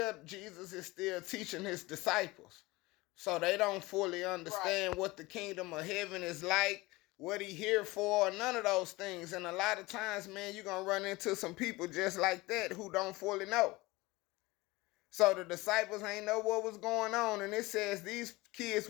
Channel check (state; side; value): quieter; right; 21.4 dB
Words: Jesus is still teaching his disciples. So they don't fully understand right. What the kingdom of heaven is like, what he here for, none of those things. And a lot of times, man, you're gonna run into some people just like that who don't fully know. So the disciples ain't know what was going on. And it says these kids